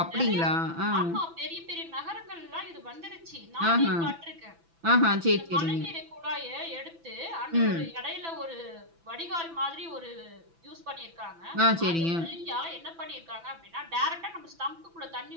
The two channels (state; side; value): late; left; 6.0 ms